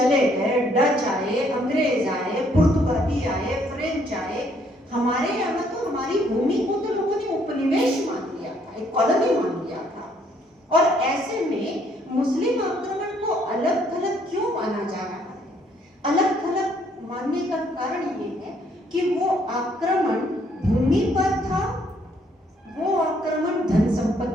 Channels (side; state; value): both; normal; correlation 0.67